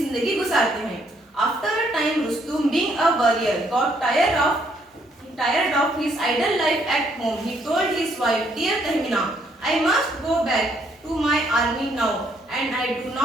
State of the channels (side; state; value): both; normal; correlation 0.70